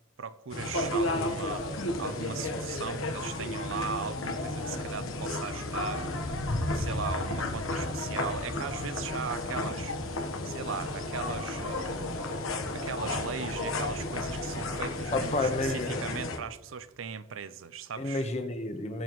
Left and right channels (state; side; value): normal; both; correlation 0.25